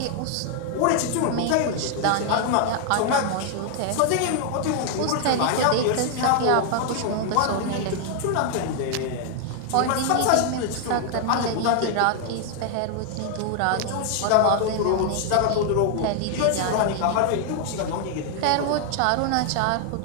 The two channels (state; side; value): different; both; correlation 0.00